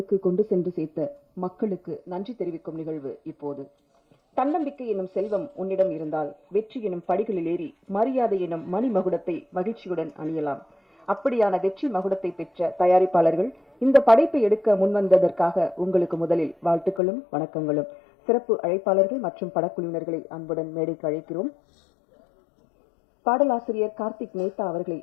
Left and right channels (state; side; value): drops out; right; at 17.0 s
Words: கொண்டு சென்று சேர்த்த மக்களுக்கு நன்றி தெரிவிக்கும் நிகழ்வு இப்போது. தன்னம்பிக்கை எனும் செல்வம் உன்னிடம் இருந்தால் வெற்றி எனும் படிகளில் ஏறி மரியாதை எனும் மணிமகுடத்தை மகிழ்ச்சியுடன் அணியலாம். அப்படியான வெற்றி மகுடத்தை பெற்ற தயாரிப்பாளர்கள் இந்த படைப்பை எடுக்க முன்வந்ததற்காக உங்களுக்கு முதலில் வாழ்த்துக்களும் வணக்கங்களும். சிறப்பு அழைப்பாளர்கள் மற்றும் படக்குழுவினர்களை அன்புடன் மேடைக்கு அழைக்கிறோம். பாடலாசிரியர் கார்த்திக் மேத்தா அவர்களை